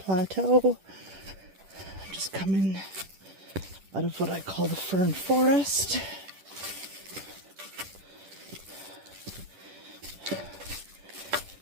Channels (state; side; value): late; left; 10 ms